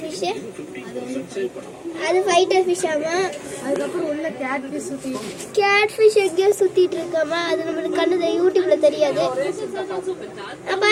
ஃபிஷ்ஷு அது ஃபைட்டர் ஃபிஷ். ஆமா, அதுக்கப்புறம் உள்ள கேட் ஃபிஷ் எங்கேயோ சுத்திட்டு இருக்காமா. அது நம்மளுக்கு கண்ணு யூடியூப்ல தெரியாது.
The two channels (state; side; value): identical; both; correlation 1.00